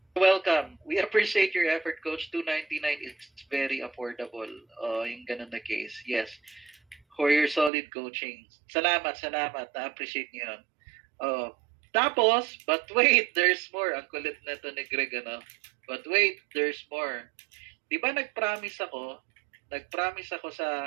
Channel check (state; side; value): drops out; left; at 7.7 s